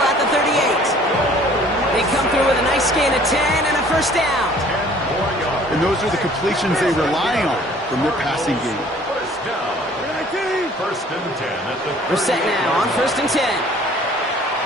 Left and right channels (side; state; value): both; normal; correlation 0.54